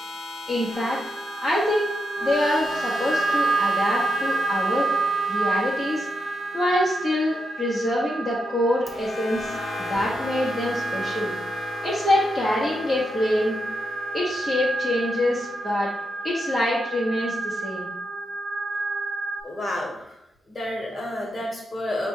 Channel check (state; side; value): normal; both; correlation 0.84